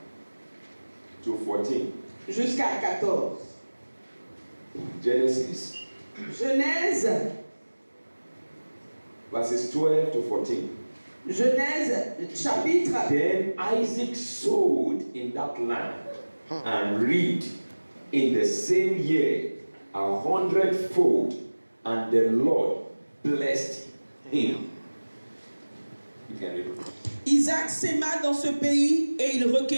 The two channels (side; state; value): both; inverted; correlation -1.00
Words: to 14. jusqu'à 14. Genesis, Genèse, verses 12 to 14. Genèse chapitre. Then Isaac sowed in that land and reaped in the same year 100-fold, and the Lord blessed him. You can read it. Isaac sema dans ce pays et il